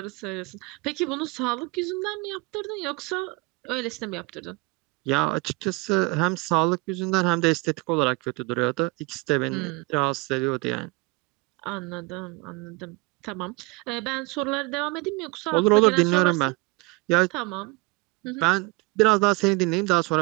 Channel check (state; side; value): quieter; left; 25.2 dB